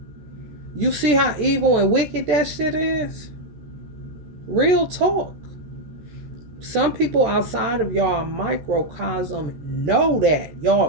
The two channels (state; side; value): late; left; 14 ms